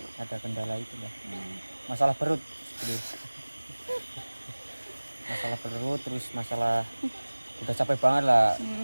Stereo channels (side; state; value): both; inverted; correlation -1.00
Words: Ada kendala itu lah. Masalah perut. Masalah perut terus masalah udah capek banget lah.